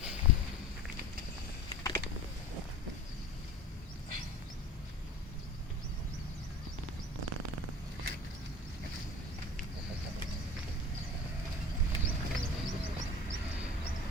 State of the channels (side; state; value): both; normal; correlation 0.38